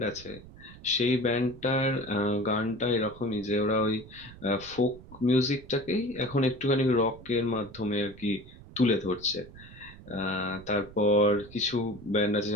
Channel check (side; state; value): right; noise; rumble, 18 dB below the sound